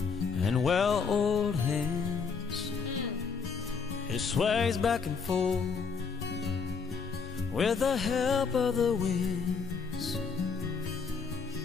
and well-oiled hands. It sways back and forth with the help of the winds.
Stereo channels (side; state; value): right; quieter; 5.4 dB